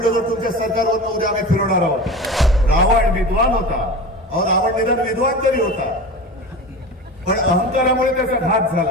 तुमच्या सरकारवरनं उद्या आम्ही फिरवणार आहोत. रावण विद्वान होता, अहो रावण निदान विद्वान तरी होता, पण अहंकारामुळे त्याचा घात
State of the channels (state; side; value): normal; both; correlation 0.31